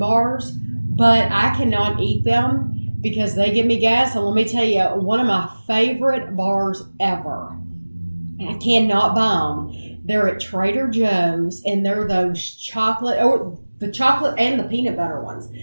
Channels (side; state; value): both; inverted; correlation -1.00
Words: But I cannot eat them because they give me gas. And let me tell you, one of my favorite bars ever. I cannot buy them. They're at Trader Joe's, and they're those chocolate, or the chocolate and the peanut butter ones.